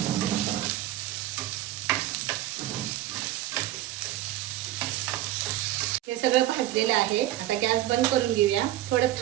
हे सगळं भाजलेलं आहे. आता गॅस बंद करून घेऊया. थोडं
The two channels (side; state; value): left; quieter; 14.3 dB